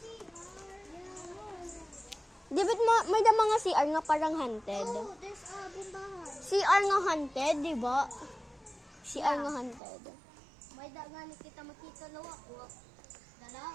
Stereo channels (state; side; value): drops out; left; at 9.8 s